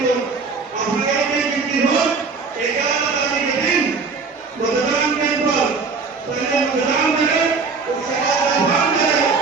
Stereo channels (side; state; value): left; quieter; 4.7 dB